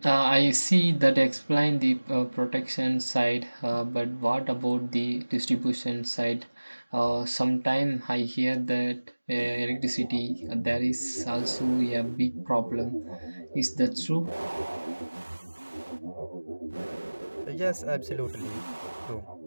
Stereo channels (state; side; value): inverted; both; correlation -1.00